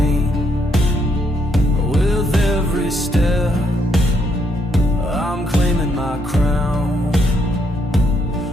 With every step I'm claiming my crown.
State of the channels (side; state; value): both; normal; correlation 0.74